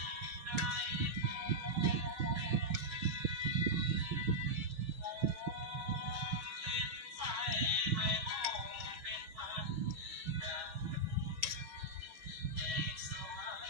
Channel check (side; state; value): left; late; 6.2 ms